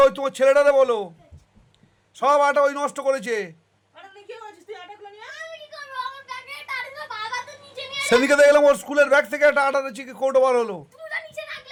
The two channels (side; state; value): both; identical; correlation 1.00